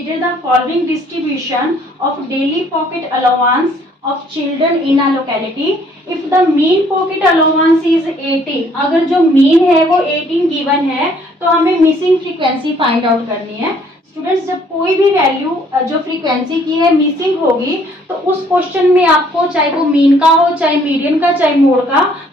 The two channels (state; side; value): normal; both; correlation 0.62